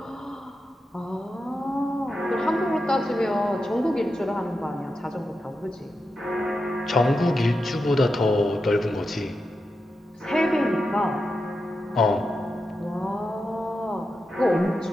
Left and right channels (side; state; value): both; normal; correlation 0.89